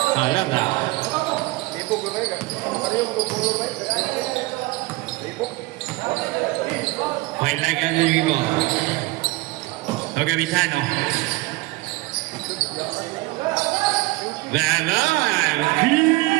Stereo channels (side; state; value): left; quieter; 21.0 dB